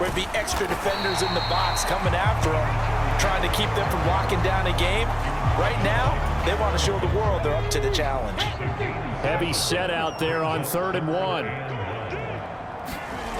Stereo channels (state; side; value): identical; both; correlation 1.00